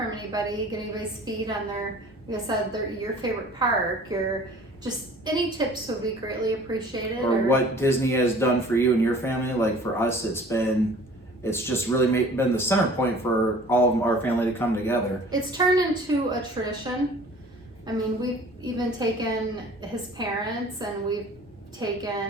anybody, get anybody's feed on like I said, your favorite park, just any tips would be greatly appreciated. Or what Disney has done for you and your family. Like for us, it's just really been the center point for all of our family to come together. It's turned into a tradition. I mean, we've even taken his parents, and we've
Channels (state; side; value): normal; both; correlation 0.48